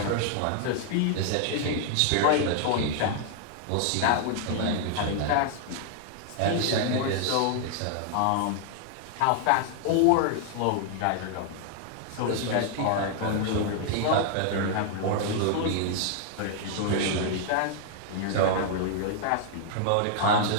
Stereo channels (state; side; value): different; both; correlation 0.00